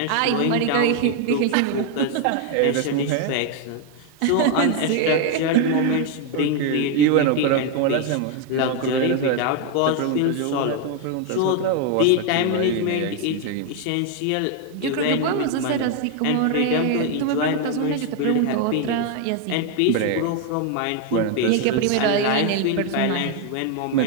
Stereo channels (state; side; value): different; both; correlation 0.01